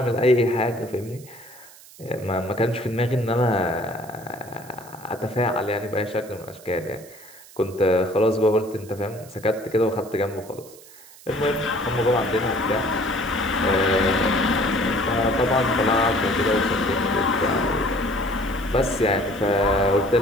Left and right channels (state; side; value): noise; right; hiss, 21 dB below the sound